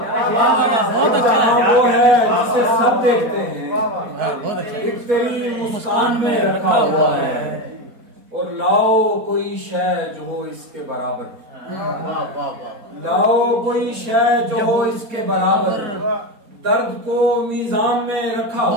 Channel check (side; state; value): left; late; 4.1 ms